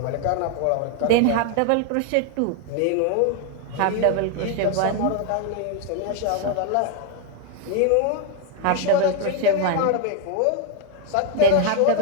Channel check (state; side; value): different; both; correlation 0.01